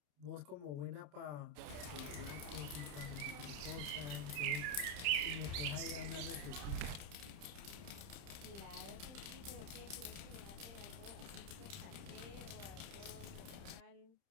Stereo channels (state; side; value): late; left; 29 ms